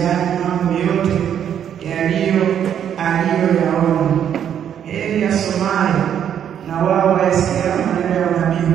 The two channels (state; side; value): quieter; left; 9.2 dB